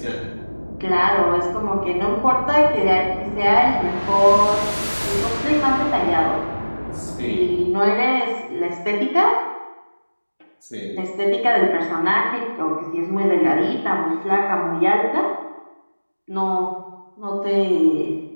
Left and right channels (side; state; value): both; inverted; correlation -1.00